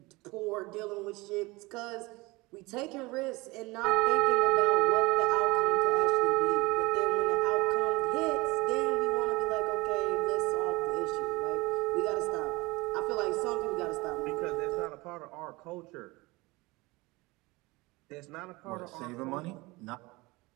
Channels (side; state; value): left; quieter; 22.9 dB